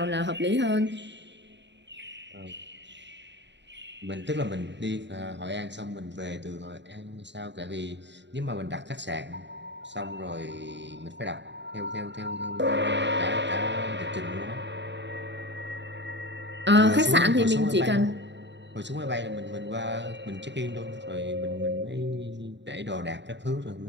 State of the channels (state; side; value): late; left; 0.52 ms